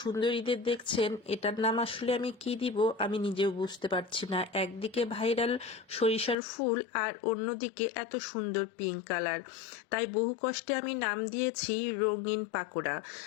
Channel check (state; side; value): drops out; right; at 6.4 s